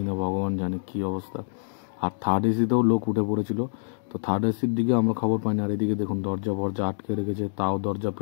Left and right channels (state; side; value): silent; right; digital silence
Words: না, ভগবান জানে কী অবস্থা। আর থার্ড এসিতেও লোক উঠে পড়েছিল। তো থার্ড এসির দিকে আমরা খবর পাইনি। আর এদিকে দেখুন দরজা ফরজা আটকে রেখেছে, তাও দরজা